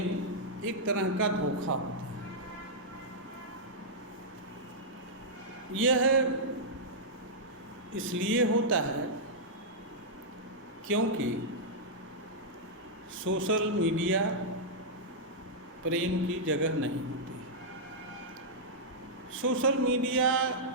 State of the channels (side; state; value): both; normal; correlation -0.09